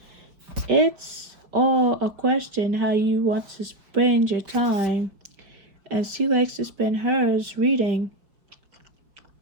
it's all a question how you want to spend your time, and she likes to spend hers reading.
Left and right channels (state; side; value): late; left; 5.2 ms